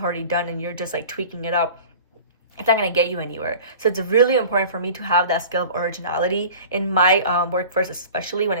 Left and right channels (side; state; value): both; inverted; correlation -0.41